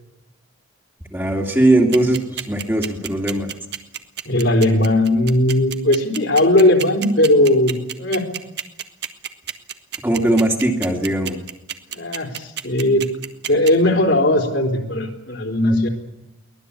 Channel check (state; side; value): normal; both; correlation 0.33